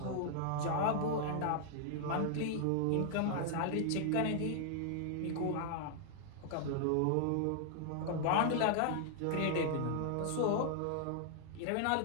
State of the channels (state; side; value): different; both; correlation 0.00